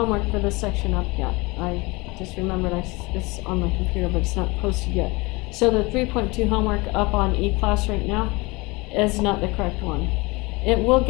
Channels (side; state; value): right; quieter; 24.9 dB